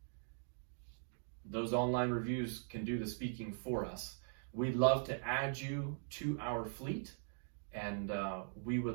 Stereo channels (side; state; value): left; silent; digital silence